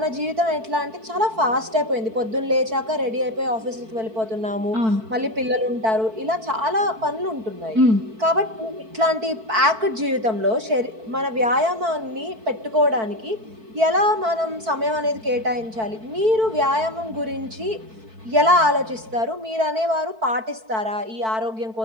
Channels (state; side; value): late; left; 4.5 ms